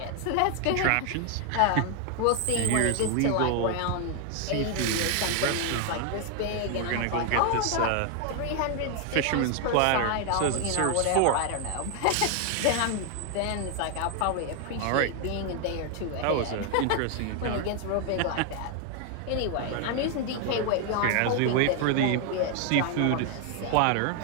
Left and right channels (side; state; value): both; different; correlation 0.00